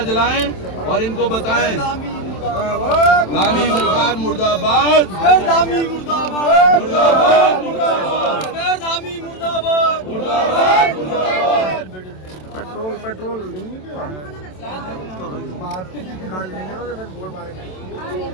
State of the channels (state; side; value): late; right; 27 ms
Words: जलाएं और इनको बताएं, धामी सरकार मुर्दाबाद, धामी मुर्दाबाद, मुर्दाबाद, मुर्दाबाद, धामी मुर्दाबाद, मुर्दाबाद, मुर्दाबाद। पेट्रोल नहीं क्या?